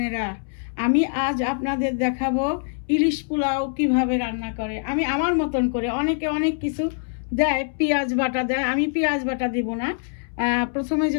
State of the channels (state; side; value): silent; right; 63 dB below the other